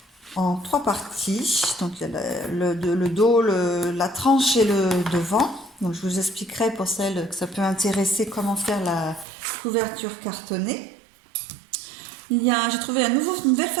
en 3 parties. Donc il y a le dos, la tranche et le devant. Donc je vous expliquerai pour celles que ça peut intéresser comment faire la couverture cartonnée. J'ai trouvé une nouvelle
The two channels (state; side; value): drops out; left; at 9.2 s